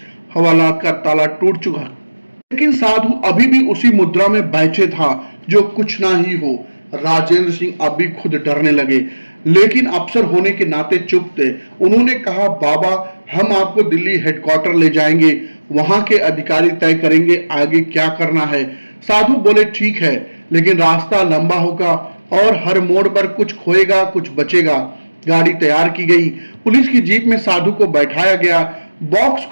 हवालात का ताला टूट चुका, लेकिन साधु अभी भी उसी मुद्रा में बैठे था जो कुछ ना ही हो। राजेंद्र सिंह अभी खुद डरने लगे, लेकिन अफसर होने के नाते चुप थे। उन्होंने कहा, बाबा, हम आपको दिल्ली हेडक्वार्टर ले जाएंगे, वहां के अधिकारी तय करेंगे आगे क्या करना है। साधु बोले, ठीक है, लेकिन रास्ता लंबा होगा और हर मोड़ पर कुछ खोएगा कुछ बचेगा। गाड़ी तैयार की गई। पुलिस की जीप में साधु को बैठाया गया। बॉक्स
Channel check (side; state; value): both; inverted; correlation -1.00